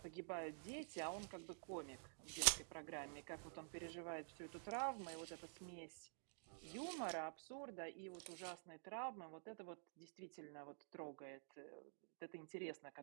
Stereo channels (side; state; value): left; silent; digital silence